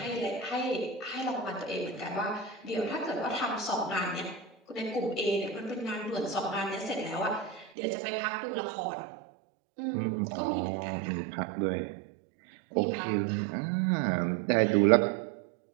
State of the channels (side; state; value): left; drops out; at 7.7 s